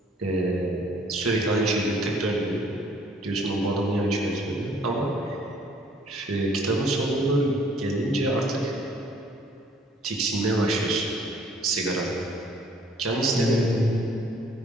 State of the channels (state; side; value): normal; both; correlation 0.59